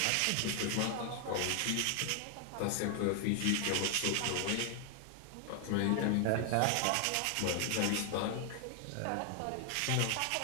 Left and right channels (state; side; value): different; both; correlation 0.00